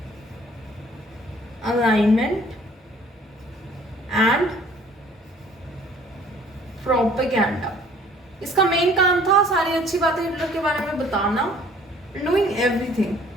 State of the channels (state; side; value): normal; both; correlation 0.55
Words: Alignment and Propaganda. इसका मेन काम था सारी अच्छी बातें हिटलर के बारे में बताना, डूइंग एवरीथिंग।